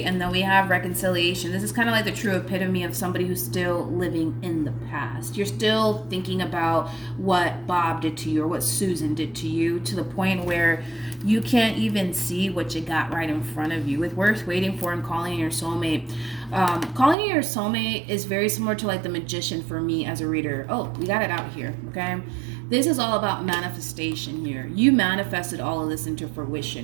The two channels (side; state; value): left; drops out; at 17.2 s